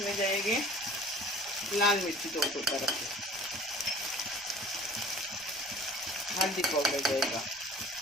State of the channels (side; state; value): left; noise; rumble, 29 dB below the sound